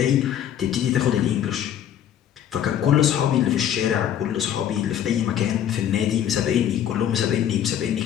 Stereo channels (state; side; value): quieter; right; 10.0 dB